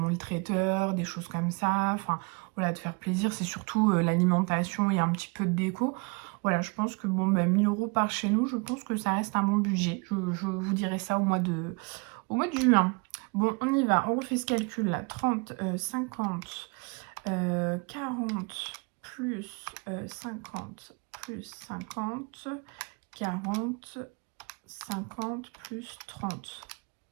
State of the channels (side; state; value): left; quieter; 31.1 dB